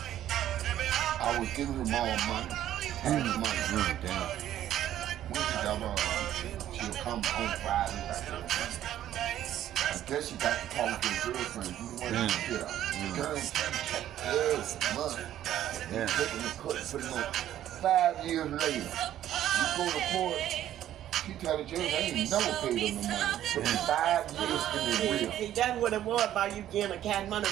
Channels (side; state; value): left; quieter; 12.0 dB